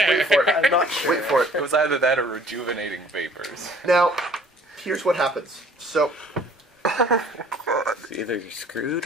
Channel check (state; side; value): normal; both; correlation 0.54